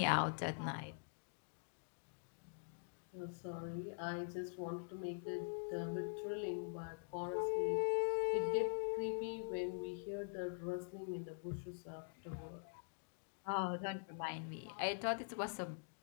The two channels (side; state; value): right; silent; digital silence